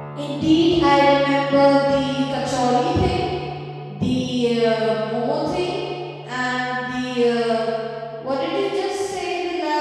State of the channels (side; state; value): both; identical; correlation 1.00